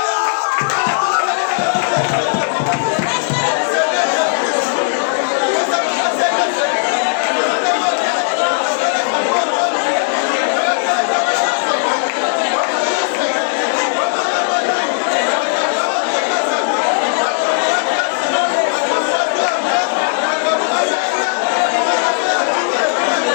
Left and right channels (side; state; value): right; silent; 69 dB below the other